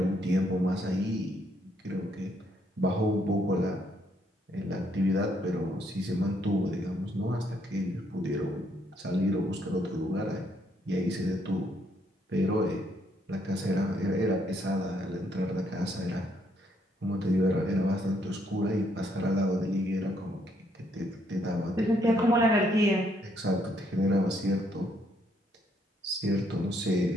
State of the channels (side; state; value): both; normal; correlation 0.71